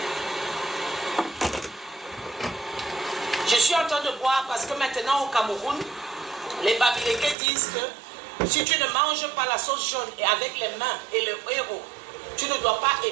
Je suis en train de boire parce que maintenant au Cameroun, les Bamileke disent que si tu ne manges pas la sauce jaune et avec les mains et le héros, tu ne dois pas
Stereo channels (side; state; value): left; drops out; at 7.4 s